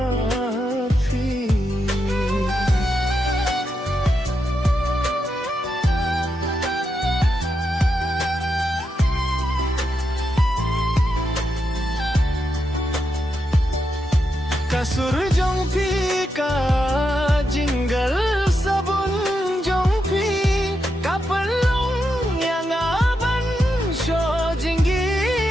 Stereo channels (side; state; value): both; normal; correlation 0.84